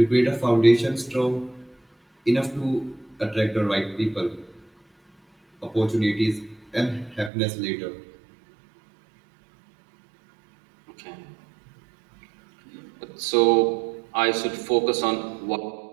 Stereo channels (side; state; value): left; drops out; at 7.3 s